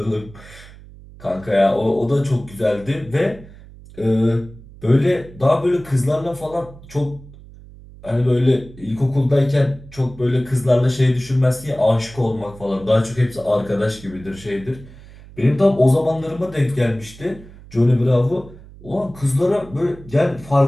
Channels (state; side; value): noise; right; hum, 20 dB below the sound